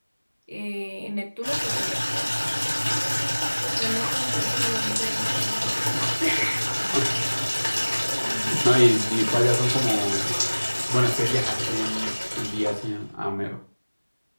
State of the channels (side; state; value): both; inverted; correlation -1.00